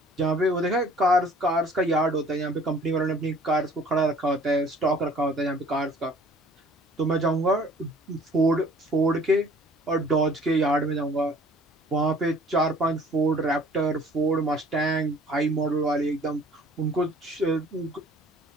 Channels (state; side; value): normal; both; correlation 0.52